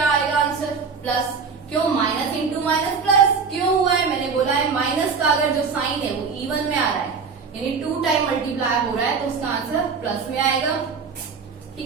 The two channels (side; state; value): left; quieter; 5.4 dB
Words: आएगा आंसर? प्लस। क्यों? Minus into minus plus. क्यों हुआ है? मैंने बोला है माइनस का अगर जो साइन है वो इवन में आ रहा है, यानी 2 टाइम मल्टीप्लाई हो रहा है, तो उसका आंसर प्लस में आएगा,